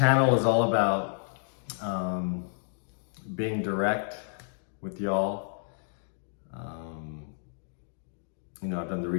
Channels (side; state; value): right; silent; digital silence